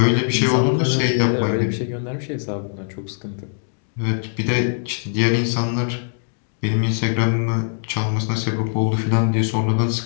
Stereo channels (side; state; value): right; silent; digital silence